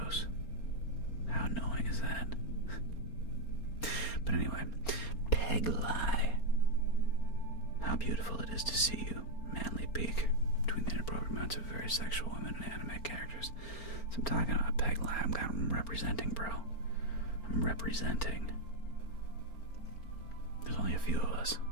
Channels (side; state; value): right; late; 4.3 ms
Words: How annoying is that? But anyway, Peg Lie. How beautiful it is to see you. Manly peak between the inappropriate amounts of very sexual women and anime characters. So I'm talking about Peg Lie. I'm representing, bro. I'm representing. There's only a few of us.